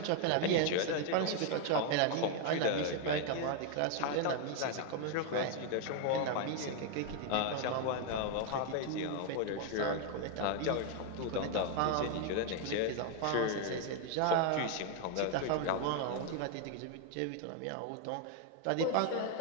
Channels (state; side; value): different; both; correlation 0.01